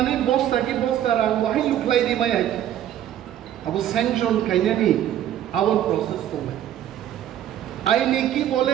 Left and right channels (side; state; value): left; quieter; 11.3 dB